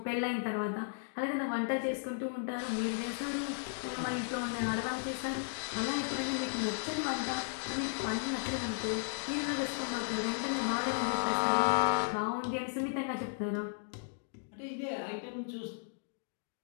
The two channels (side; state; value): right; silent; digital silence